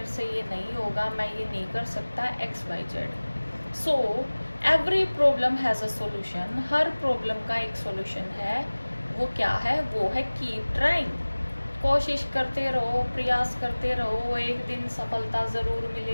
से ये नहीं होगा, मैं ये नहीं कर सकता, XYZ। So every problem has a solution. Her problem का एक सॉल्यूशन है। वो क्या है? वो है कीप ट्राइंग। कोशिश करते रहो, प्रयास करते रहो, एक दिन सफलता ज़रूर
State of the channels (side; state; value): both; inverted; correlation -1.00